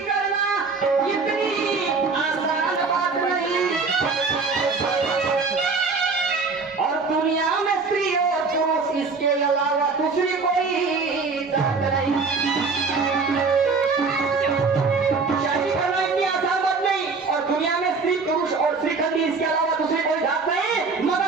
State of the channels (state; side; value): quieter; left; 4.5 dB